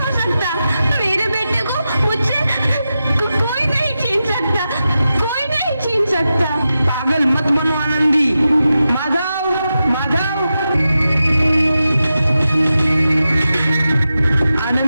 सकता। मेरे बेटे को मुझसे कोई नहीं छीन सकता, कोई नहीं छीन सकता। पागल मत बनो आनंदी। माधव, माधव।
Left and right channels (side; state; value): both; inverted; correlation -0.91